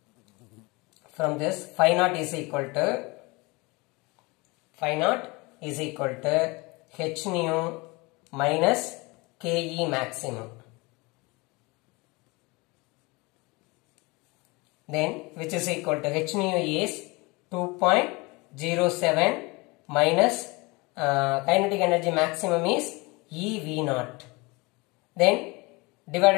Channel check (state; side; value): quieter; right; 25.4 dB